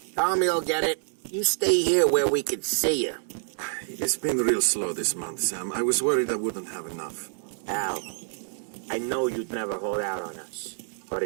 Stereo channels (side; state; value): left; silent; 60 dB below the other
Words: Tommy'll get it. You stay here where we can see you. It's been real slow this month, Sam. I was worried I wouldn't have enough. Al, I know you'd never hold out on us, but